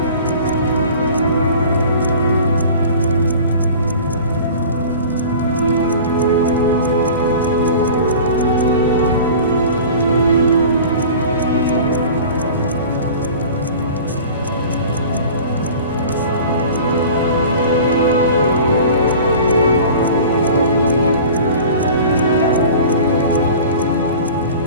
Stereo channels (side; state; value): both; inverted; correlation -0.41